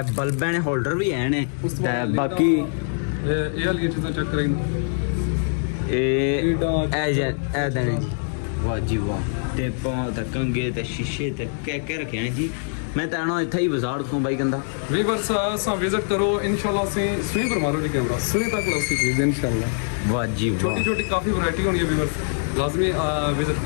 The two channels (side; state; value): right; silent; digital silence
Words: बल्ब ने होल्डर भी है ने ते बाकी ये वाली चीज़ें चेक करेंगे ए देने जी वाह जी वाह ते पाँव ते कंगे ते शीशे ते क्या रखे हैं जी। मैं तो आना इतना ही बाजार को भाई गंदा वीवर्स सा विजिट करो इंशाल्लाह से सुई पर मारो जी कैमरा सुई तक लो सी चीज़ इंशाल्लाह वाह जी वाह छोटी काफ़ी वैरायटी होनी है वीवर्स लाजमी विजिट